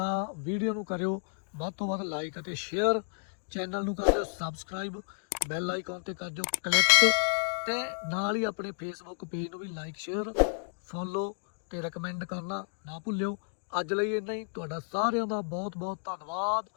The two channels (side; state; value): right; silent; digital silence